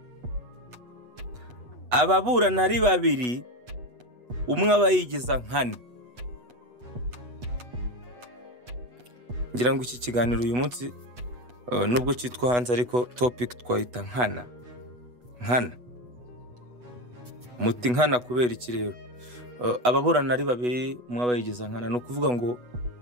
ababurana ari babiri umwe aba yigiza nkana. Ngira ngo iki kiganiro uyu munsi nubwo cyitwa hanze, ariko topic twayita nkana. Muti nkana kubera iki rero? Ababurana ari babiri umwe aba yigiza nkana, no kuvuga ngo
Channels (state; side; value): late; left; 8.1 ms